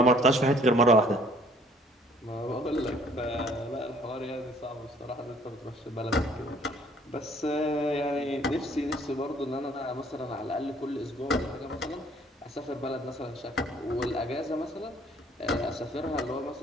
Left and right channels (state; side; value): normal; both; correlation 0.58